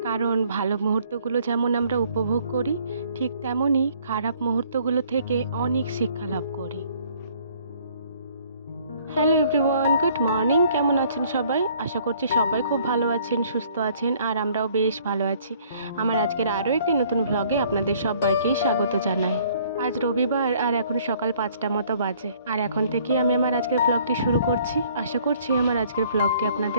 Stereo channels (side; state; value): both; inverted; correlation -0.60